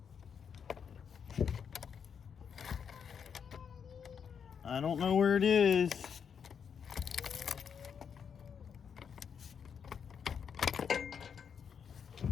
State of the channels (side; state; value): right; quieter; 7.1 dB